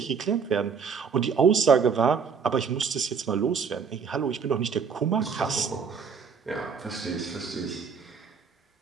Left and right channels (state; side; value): quieter; left; 6.0 dB